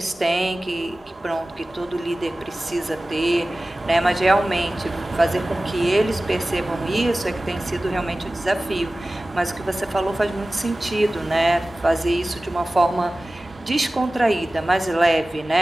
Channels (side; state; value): both; normal; correlation 0.97